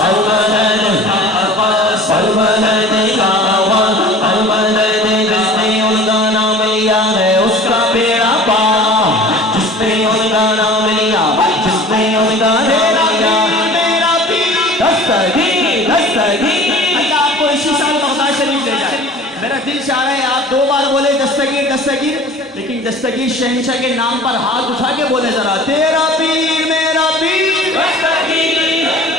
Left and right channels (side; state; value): both; normal; correlation 0.43